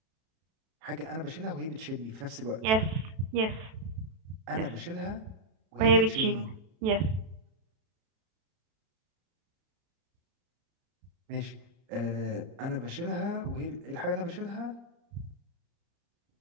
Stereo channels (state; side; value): late; left; 32 ms